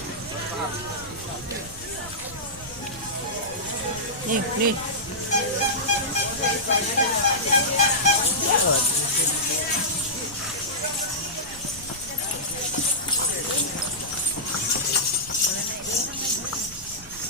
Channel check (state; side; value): noise; right; rumble, 18 dB below the sound